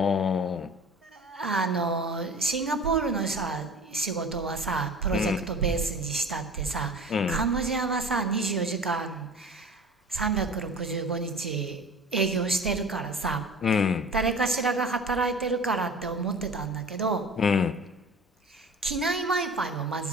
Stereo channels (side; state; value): both; normal; correlation 0.40